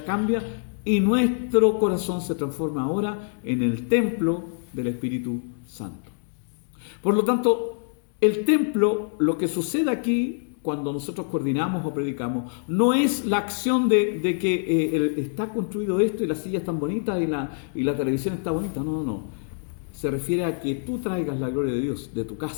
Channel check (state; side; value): silent; right; digital silence